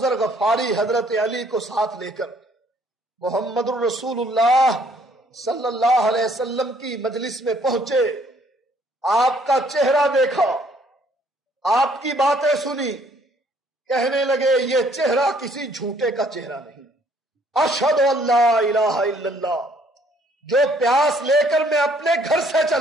غفاری حضرت علی کو ساتھ لے کر محمد الرسول اللہ صلی اللہ علیہ وسلم کی مجلس میں پہنچے، آپ کا چہرہ دیکھا، آپ کی باتیں سنی، کہنے لگے یہ چہرہ کسی جھوٹے کا چہرہ نہیں۔ اشہد ان لا الہ الا اللہ، جو پیاس لے کر میں اپنے گھر سے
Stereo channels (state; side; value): normal; both; correlation 0.63